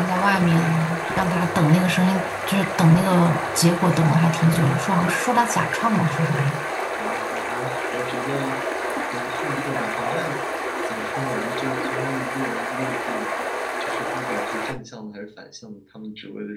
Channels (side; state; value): both; identical; correlation 1.00